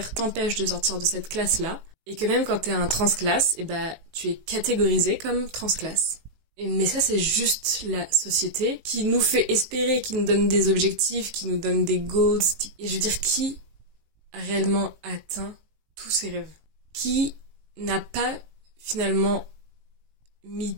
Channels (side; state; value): left; late; 18 ms